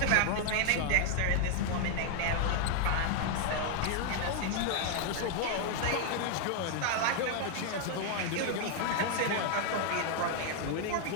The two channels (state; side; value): different; both; correlation 0.00